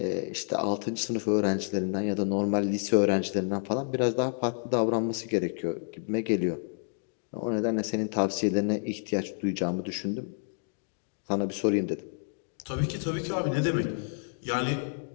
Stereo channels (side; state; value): right; silent; digital silence